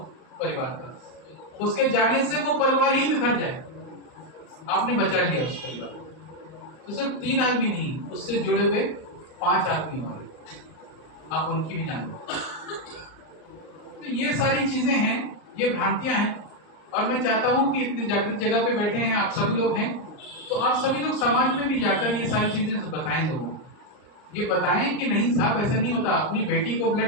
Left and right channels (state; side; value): late; right; 39 ms